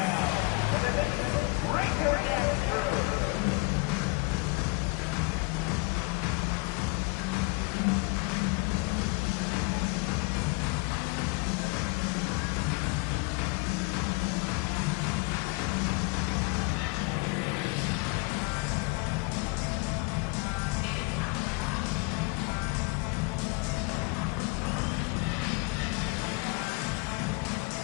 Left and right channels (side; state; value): right; quieter; 28.5 dB